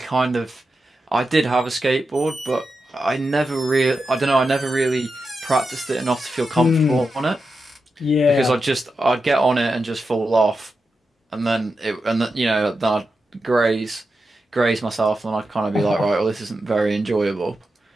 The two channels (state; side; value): normal; both; correlation 0.89